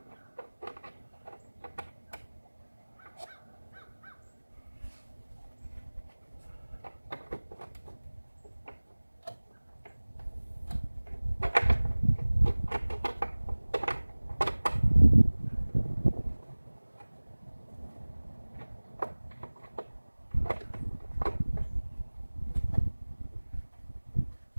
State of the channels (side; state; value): both; inverted; correlation -1.00